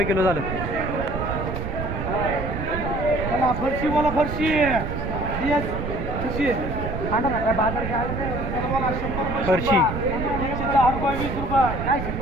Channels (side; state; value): right; noise; rumble, 4 dB below the sound